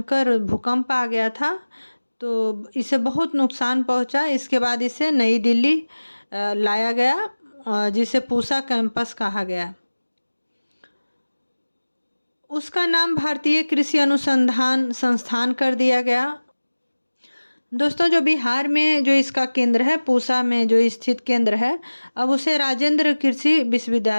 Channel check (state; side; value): inverted; both; correlation -1.00